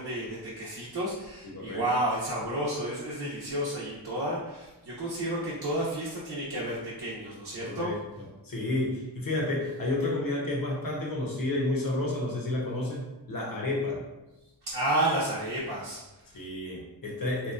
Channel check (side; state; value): both; normal; correlation 0.19